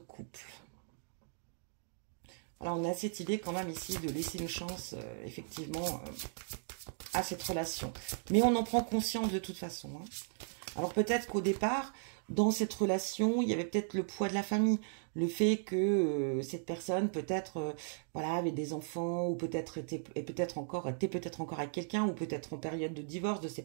Alors, on a cette idée quand même ici de laisser une chance, effectivement, à cette relation. Mais on en prend conscience de toute façon. Hein. Alors, peut-être qu'au départ, dans cette relation, il y avait peut-être le poids de la famille. Le fait que cette personne, peut-être, voilà, avait des enfants, ou peut-être était peut-être encore avec quelqu'un, ou peut-être en période de divorce, de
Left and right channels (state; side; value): silent; left; digital silence